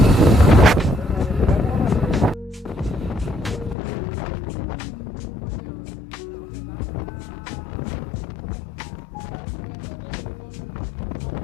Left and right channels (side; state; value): right; drops out; at 3.8 s